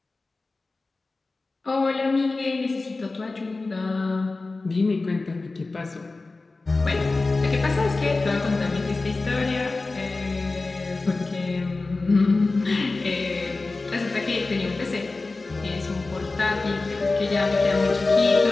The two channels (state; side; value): quieter; right; 3.5 dB